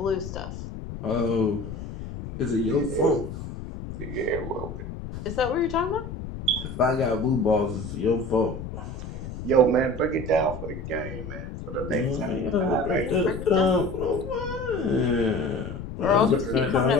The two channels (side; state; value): left; noise; rumble, 9 dB below the sound